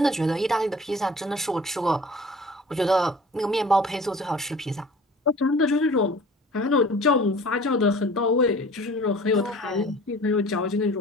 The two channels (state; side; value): normal; both; correlation 0.45